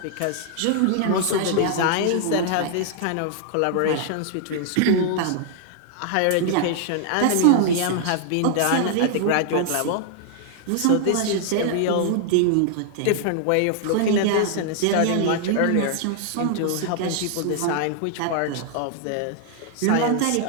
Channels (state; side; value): different; both; correlation 0.00